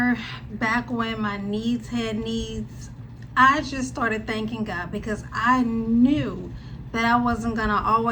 back when my needs had needs, I just started thanking God because I knew that I wasn't going to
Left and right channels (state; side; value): identical; both; correlation 1.00